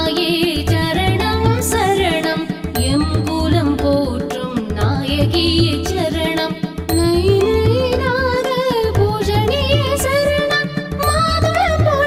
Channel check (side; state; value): both; identical; correlation 1.00